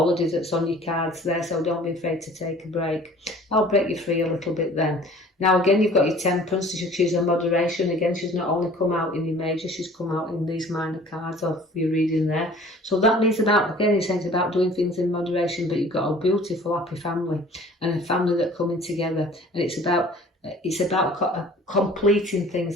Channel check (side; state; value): both; normal; correlation 0.49